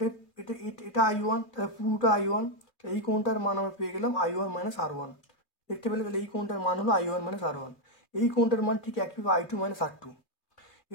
এটা I1, তাহলে পুরোটা I1, এই কোণটার মান আমরা পেয়ে গেলাম I1 মাইনাস R1। দেখতে পেলে, তাহলে এই কোণটার মান হলো I1 মাইনাস R1, এই কোণটার মান ঠিক একইভাবে I2 মাইনাস R2।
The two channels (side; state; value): right; late; 2.3 ms